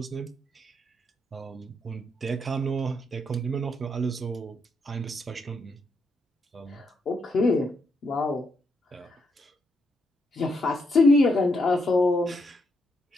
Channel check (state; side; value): normal; both; correlation 0.78